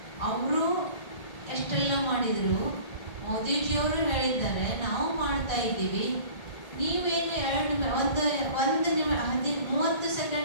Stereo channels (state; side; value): late; right; 1.8 ms